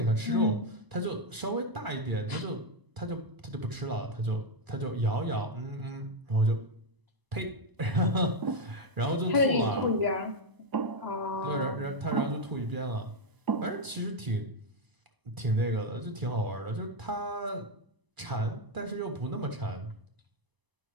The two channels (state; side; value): late; left; 1.0 ms